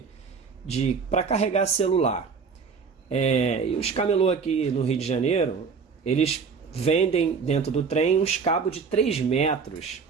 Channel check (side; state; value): left; quieter; 5.5 dB